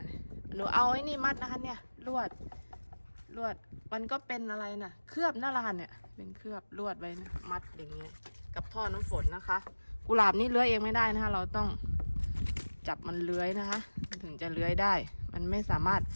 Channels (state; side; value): inverted; both; correlation -1.00